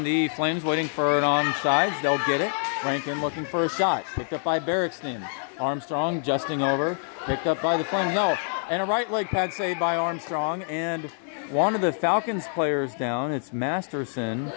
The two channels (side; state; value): right; silent; 61 dB below the other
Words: the Flames waiting for it on sides. They'll get it. Rankin looking for a shot. Picked up by Barrickston. Armstrong adjusting over. Picked up by the Flames. No. And a right leg pad save by Armstrong. And one of the Falcons players down. It's Masterson.